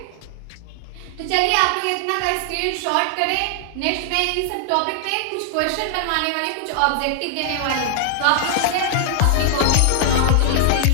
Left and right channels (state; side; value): different; both; correlation 0.00